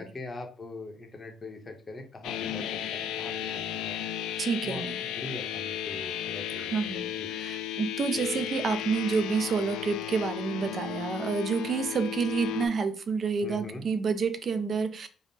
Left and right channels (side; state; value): both; normal; correlation 0.66